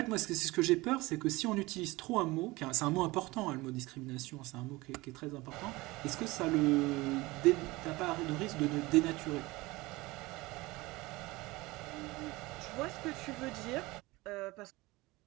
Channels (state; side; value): quieter; left; 21.3 dB